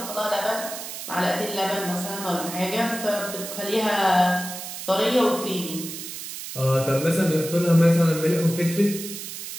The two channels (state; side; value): noise; right; hiss, 9 dB below the sound